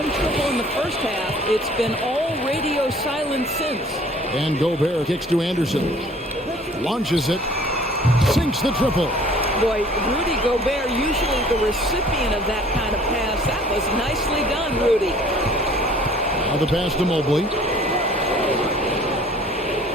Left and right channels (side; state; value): both; normal; correlation 0.53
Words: triple in the first half, it's been all radio silence since. And Gobert kicks to Anderson. Launches it. Sinks the triple. Boy, Rudy Gobert, usually the recipient of that kind of pass. That was nicely done, Rudy. Now the pass to Mobley.